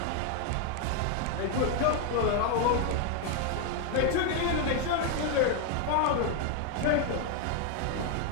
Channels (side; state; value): both; different; correlation 0.01